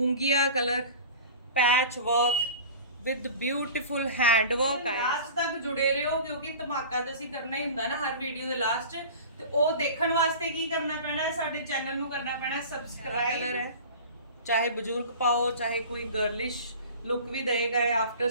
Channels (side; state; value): both; inverted; correlation -0.38